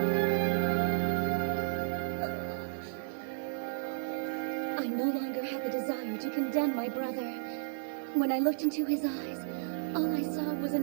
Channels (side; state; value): left; silent; digital silence